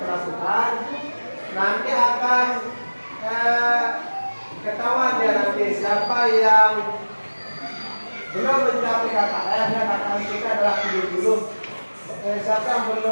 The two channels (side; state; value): both; inverted; correlation -1.00